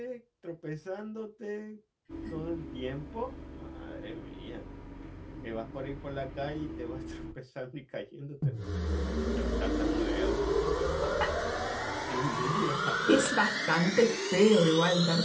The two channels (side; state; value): both; identical; correlation 1.00